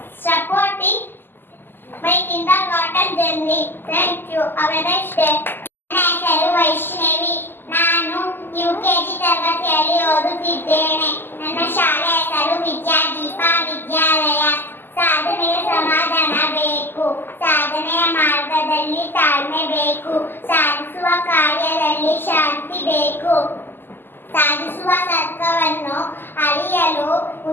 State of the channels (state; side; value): late; right; 0.097 ms